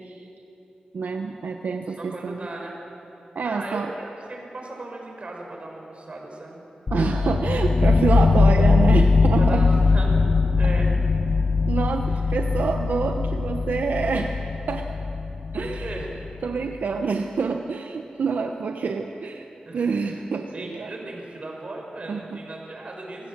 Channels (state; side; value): normal; both; correlation 0.89